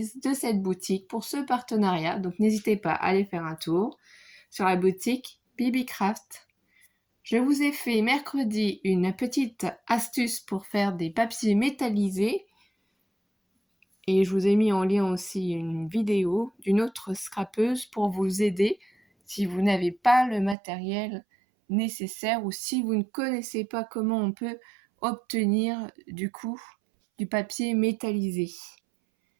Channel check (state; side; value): drops out; left; at 20.6 s